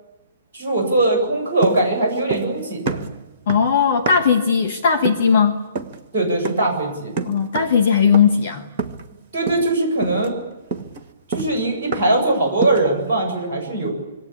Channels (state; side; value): inverted; both; correlation -0.59